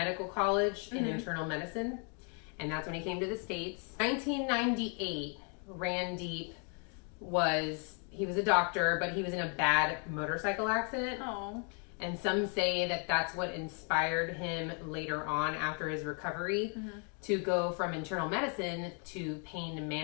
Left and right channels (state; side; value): quieter; right; 39.3 dB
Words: College in internal medicine. And that's when he came to the States. 1998, Randeep was a doctor, but he was in a bad motorcycle accident. Oh. And some say that that's what inspired him later on after his recovery to go from internal medicine to pain